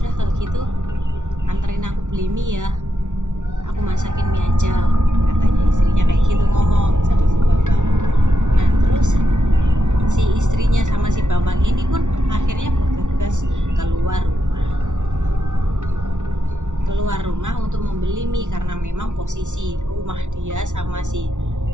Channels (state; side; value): late; left; 0.85 ms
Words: kalau gitu anterin aku beli mie ya, aku masakin mie aja, katanya istrinya kayak gitu ngomong sama si Bambang. Nah terus si istrinya sama si Bambang ini pun akhirnya bergegas keluar rumah untuk membeli mie, karena memang posisi rumah dia sama si